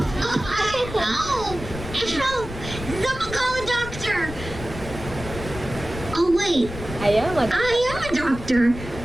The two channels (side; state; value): left; noise; rumble, 10 dB below the sound